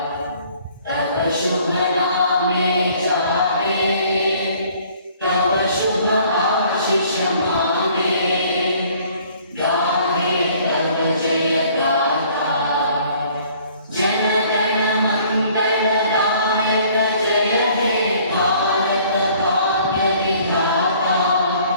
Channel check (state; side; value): inverted; both; correlation -0.57